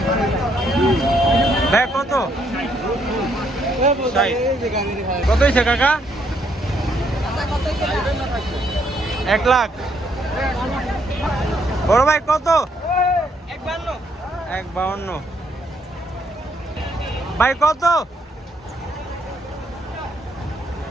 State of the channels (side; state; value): both; normal; correlation 0.72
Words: ভাই কত? কত হয়েছে কাকা? 1 লাখ। বড় ভাই কত? 1,52। ভাই কত?